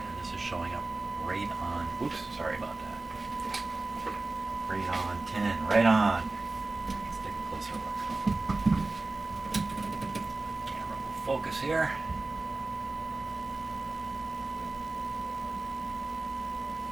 this is showing up right on, oops, sorry about that. Right on, 10, right on. Let's take a closer look. Camera will focus here.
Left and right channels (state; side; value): quieter; left; 3.3 dB